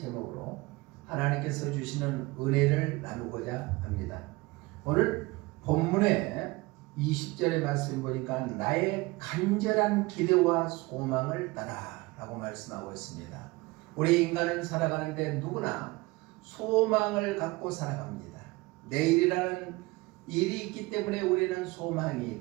하나님께서 주시는 은혜를 나누고자 합니다. 오늘 본문의 20절의 말씀 보니까 나의 간절한 기대와 소망을 따라 라고 말씀하고 있습니다. 우리 인간은 살아가는데 누구나 소망을 갖고 살아갑니다. 내일이라는 일이 있기 때문에 우리는 소망이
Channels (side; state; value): left; quieter; 22.7 dB